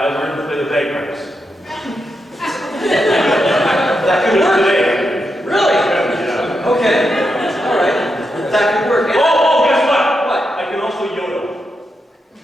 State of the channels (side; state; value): both; normal; correlation 0.85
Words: learned to play the bagpipes. That could work. Today. Really? Yeah. Okay. All right. That could work. And Oh, guess what? what? I can also yodel.